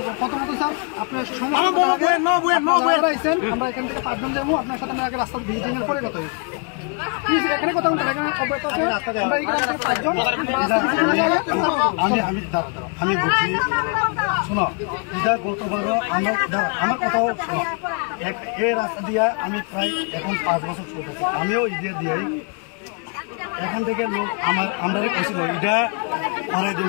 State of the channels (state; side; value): quieter; right; 36.5 dB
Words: আমরা এখান থেকে 5 জন যাবো আপনার সাথে আগে রাস্তা ভিজিটিং পরে কথা এখানে কথা আমি বলছি শোনো ইদা গতবারও আমার কথাও শোনো এই রাস্তা দিয়া আমি প্রায় এখন 5 বছর চলতেছি আমিও ইদা দিয়াই এখান থেকে লোক আমরা কইছিল ইদা করাই